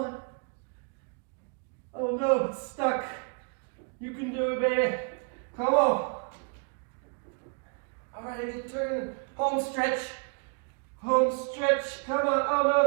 Oh no, it's stuck. You can do it, baby. Come on. All right, I get turn. Home stretch. Home stretch. Come on. Oh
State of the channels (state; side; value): quieter; left; 39.2 dB